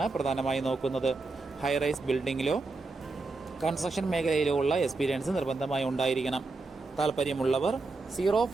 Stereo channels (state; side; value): quieter; left; 3.5 dB